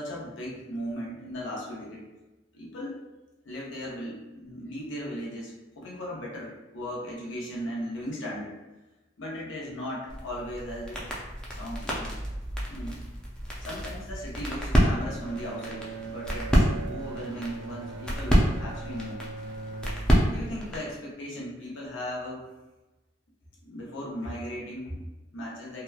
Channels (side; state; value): both; normal; correlation 0.80